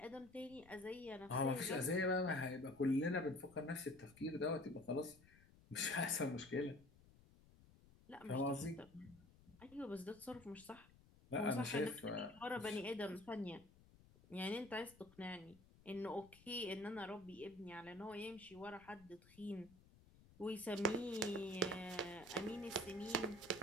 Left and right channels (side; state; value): left; noise; rumble, 24 dB below the sound